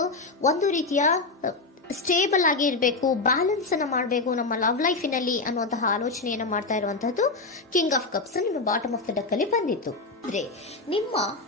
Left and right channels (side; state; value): right; quieter; 3.6 dB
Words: ಒಂದು ರೀತಿಯ ಸ್ಟೇಬಲ್ ಆಗಿ ಇರಬೇಕು, ಬ್ಯಾಲೆನ್ಸ್ ಅನ್ನ ಮಾಡಬೇಕು ನಮ್ಮ ಲವ್ ಲೈಫಿನಲ್ಲಿ ಅನ್ನುವಂತಹ ಆಲೋಚನೆಯನ್ನ ಮಾಡ್ತಾ ಇರುವಂತಹದ್ದು ಕಿಂಗ್ ಆಫ್ ಕಪ್ಸ್ ನಿಮ್ಮ ಬಾಟಮ್ ಆಫ್ ದ ಡಕ್ ಅಲ್ಲಿ ಬಂದಿತ್ತು. ಅಂದ್ರೆ ನಿಮ್ಮ